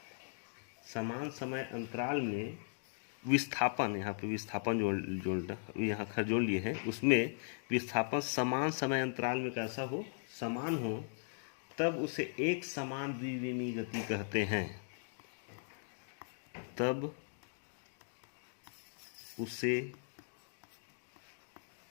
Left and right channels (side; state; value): right; silent; digital silence